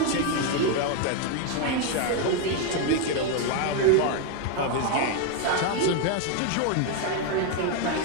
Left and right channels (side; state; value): both; different; correlation 0.01